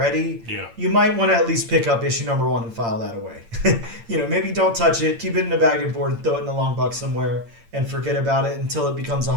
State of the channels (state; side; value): late; left; 8.8 ms